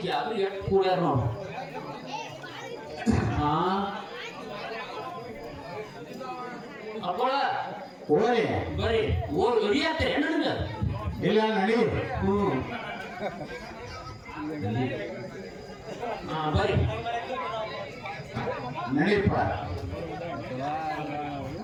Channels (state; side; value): identical; both; correlation 1.00